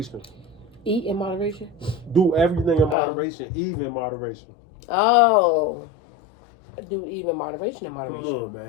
Eat in moderation? Do everything in moderation, even moderation. Oh. Do even moderation in moderation. Come on,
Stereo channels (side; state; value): right; drops out; at 3.0 s